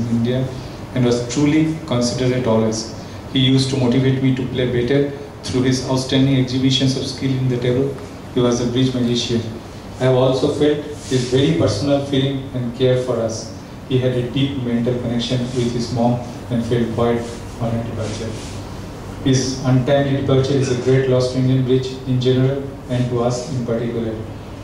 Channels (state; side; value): identical; both; correlation 1.00